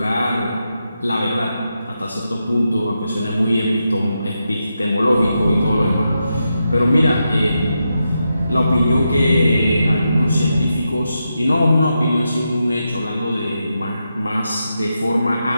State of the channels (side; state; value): both; inverted; correlation -0.86